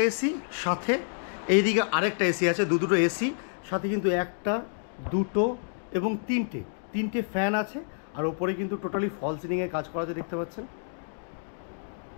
এসি, সাথে এইদিকে আরেকটা এসি আছে, দুটো এসি, সাথে কিন্তু 1, 2 এবং 3টে ফ্যান আছে। আর ওপরে কিন্তু টোটালি ফল সিলিংয়ের কাজ করা আছে, দেখতে পাচ্ছেন।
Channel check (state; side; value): silent; right; digital silence